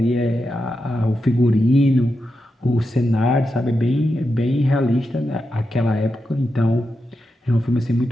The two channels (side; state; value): both; normal; correlation 0.88